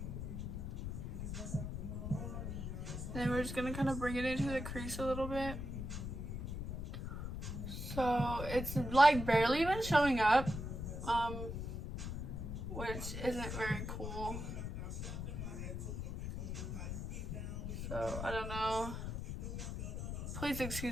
And then we're just gonna kind of bring it into the crease a little bit. So, it's like barely even showing up, which isn't very cool. So, I don't know. Please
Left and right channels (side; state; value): left; noise; rumble, 4 dB below the sound